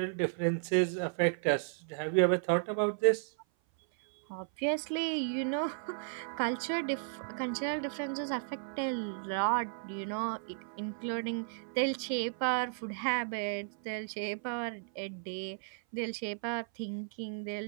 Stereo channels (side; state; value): left; silent; 55 dB below the other